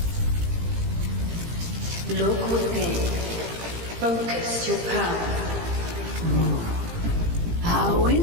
Look within. Focus your power. How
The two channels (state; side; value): late; left; 18 ms